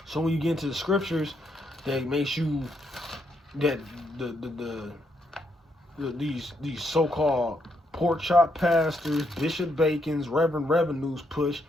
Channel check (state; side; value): normal; both; correlation 0.77